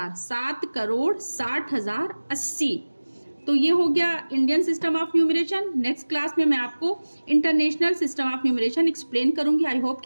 7 करोड़ 60,000 80। तो ये हो गया Indian system of numeration. Next class में मैं आपको international system of numeration explain करूंगी। आई होप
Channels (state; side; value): inverted; both; correlation -1.00